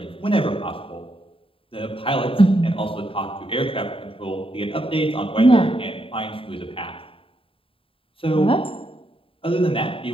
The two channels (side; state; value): right; late; 0.26 ms